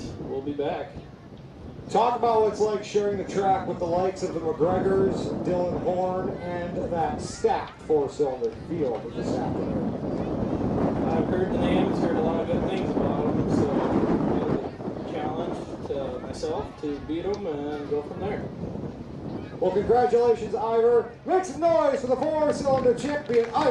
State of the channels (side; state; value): both; identical; correlation 1.00